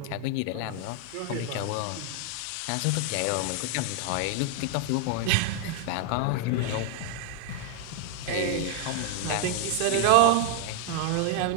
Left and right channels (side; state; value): both; different; correlation 0.01